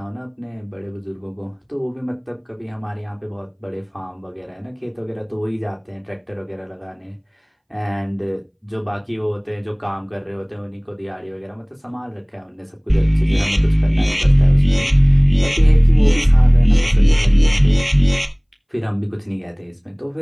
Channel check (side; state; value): both; identical; correlation 1.00